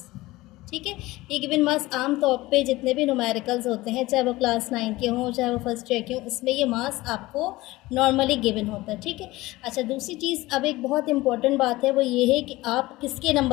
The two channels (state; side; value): quieter; right; 19.1 dB